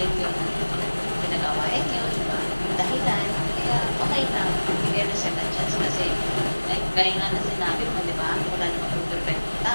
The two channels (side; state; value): both; inverted; correlation -1.00